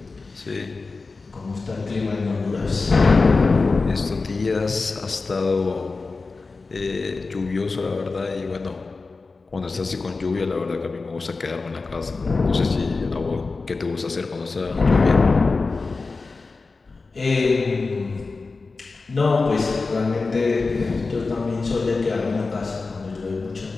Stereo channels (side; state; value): right; quieter; 4.0 dB